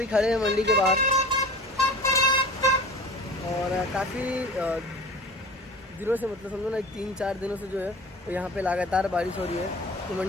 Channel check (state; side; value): normal; both; correlation 0.38